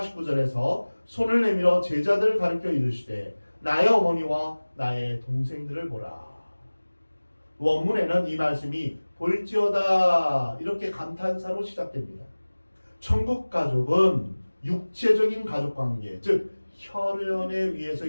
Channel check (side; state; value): both; inverted; correlation -1.00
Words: 손을 내밀어 제자들을 가리켜 이르시되 나의 어머니와 나의 동생들을 보라. 원문에는 이 말씀이 볼지어다 이렇게 감탄사로 시작됩니다. 천국 가족은 육체적인 가족관계, 즉 혈연에 의해서